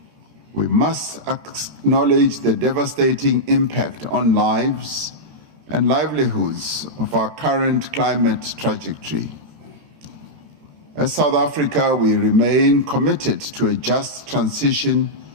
We must acknowledge the devastating impact on lives and livelihoods of our current climate trajectory. As South Africa, we remain committed to a just transition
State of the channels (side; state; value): left; late; 13 ms